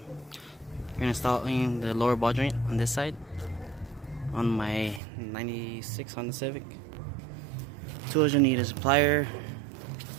installing the lower ball joint on this side on my 96 Honda Civic. Tools you need is a plier,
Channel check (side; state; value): left; drops out; at 5.0 s